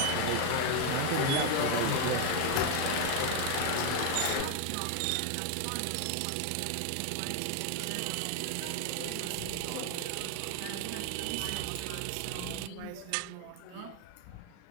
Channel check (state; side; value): different; both; correlation 0.01